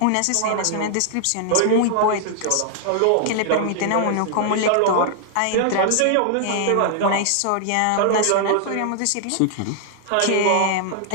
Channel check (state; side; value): different; both; correlation 0.00